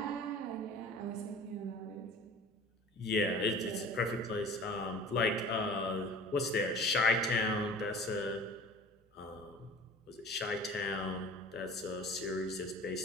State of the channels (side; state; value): both; normal; correlation 0.42